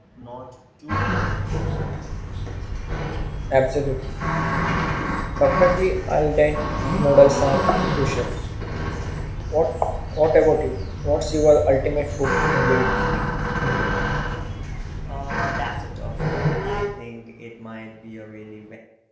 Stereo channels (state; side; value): identical; both; correlation 1.00